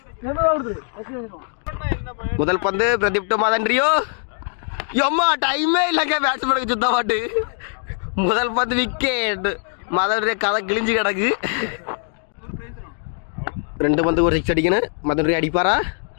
முதல் பந்து பிரதீப் டு மதன் ரியோ. எம்மா டைமே இல்லைங்க பேட்ஸ்மேனுக்கு சுத்த மாட்டு. முதல் பந்து விக்கெட். மதன் ரியோ கதை கிழிஞ்சு கிடக்கு. 2 பந்து ஒரு 6 அடிக்கணும். மதன் ரியோ அடிப்பாரா?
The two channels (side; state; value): right; silent; 60 dB below the other